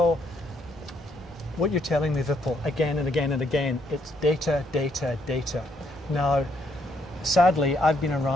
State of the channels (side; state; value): both; normal; correlation 0.73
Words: what you're telling me, Vipul, again and again and again, it's data, data, data. Now, sadly, I've been